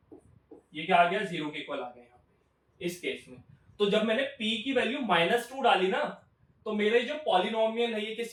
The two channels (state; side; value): identical; both; correlation 1.00